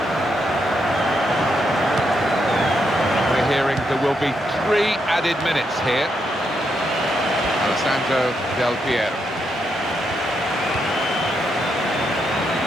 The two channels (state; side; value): normal; both; correlation 0.80